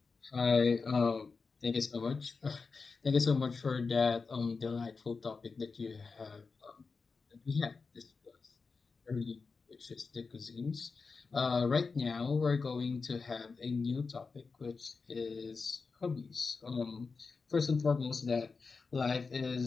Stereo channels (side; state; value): right; quieter; 4.6 dB